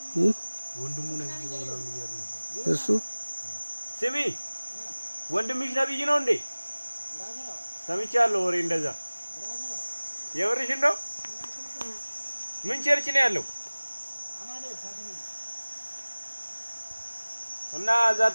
ወንድሙ ነብይ ነው ምናምን እያሉ ነበር እሱ ስሚ ወንድምሽ ነብይ ነው እንዴ ሰምቻለሁ ወሬ እንደዛ የወርሽን ነው ምን ቸርች ነው ያለው እና እዛ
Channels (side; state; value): both; inverted; correlation -1.00